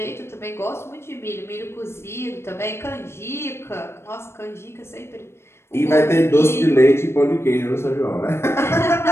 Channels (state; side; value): late; right; 0.12 ms